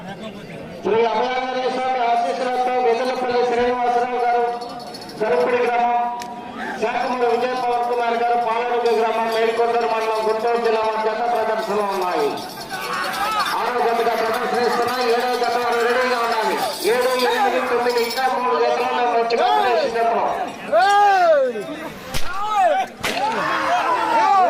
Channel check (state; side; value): identical; both; correlation 1.00